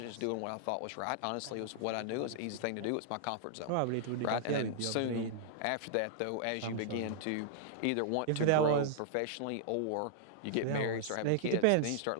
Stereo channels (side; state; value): both; different; correlation -0.01